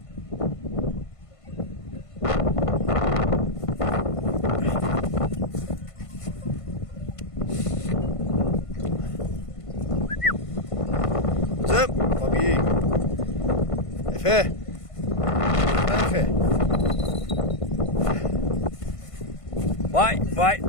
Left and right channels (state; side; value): late; right; 1.5 ms